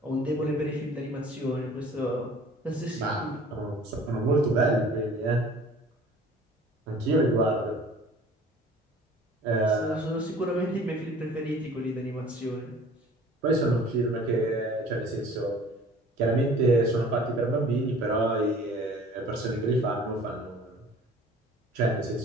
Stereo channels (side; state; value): both; normal; correlation 0.48